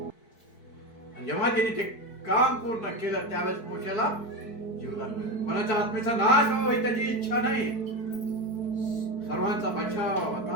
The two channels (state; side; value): late; right; 4.6 ms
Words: जेव्हा त्यांनी ते काम पूर्ण केलं त्यावेळेस मोशेला जीवदान मिळालं. कोणाच्या आत्मेचा नाश व्हावा ही त्याची इच्छा नाही, सर्वांचा बचाव व्हावा,